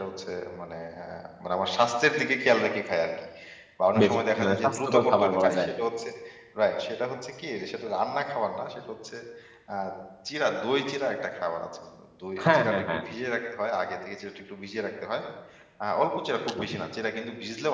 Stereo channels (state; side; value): identical; both; correlation 1.00